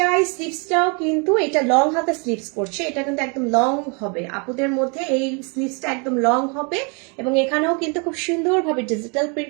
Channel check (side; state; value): left; quieter; 34.0 dB